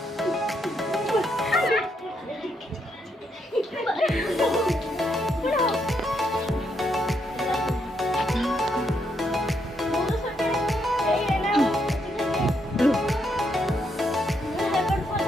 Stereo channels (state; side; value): normal; both; correlation 0.77